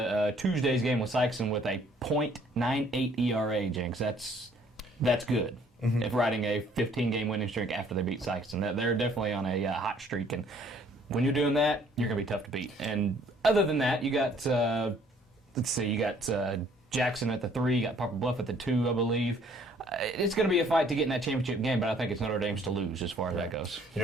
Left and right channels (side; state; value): both; normal; correlation 0.60